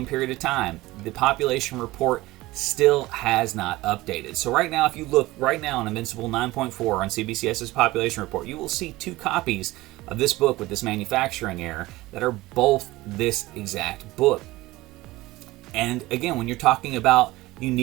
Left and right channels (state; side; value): quieter; left; 19.0 dB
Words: period of time. The population report still has not updated. So right now, if you look right now on Invincible 9.4 on CBCS's population report, you will see 2 copies of this book with this manufacturing error that are both this exact book. And again, when you're talking about